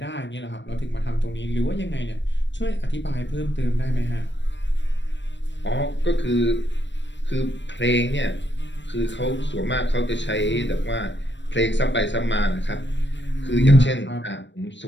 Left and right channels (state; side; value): late; right; 0.53 ms